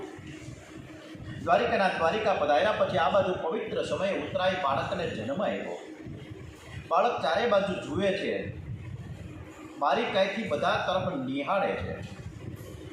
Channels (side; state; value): both; identical; correlation 1.00